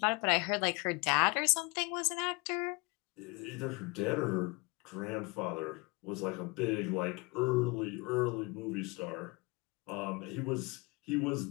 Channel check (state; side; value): quieter; right; 27.4 dB